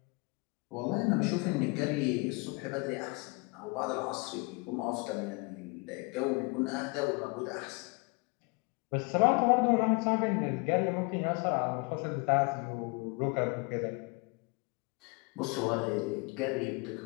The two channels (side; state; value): right; quieter; 29.4 dB